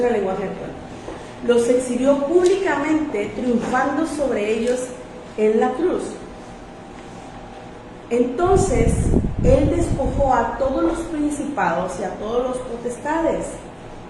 al lenguaje actual, los exhibió públicamente, triunfando sobre ellos en la cruz. Entonces, Él despojó a todos los principados y a todos los potestades.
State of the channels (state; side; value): identical; both; correlation 1.00